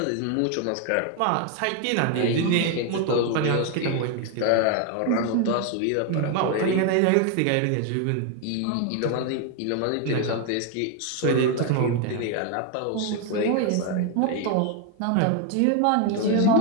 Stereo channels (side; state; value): both; different; correlation 0.01